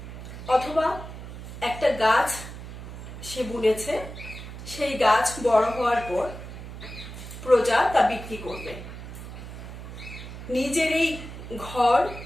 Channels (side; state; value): right; noise; hum, 11 dB below the sound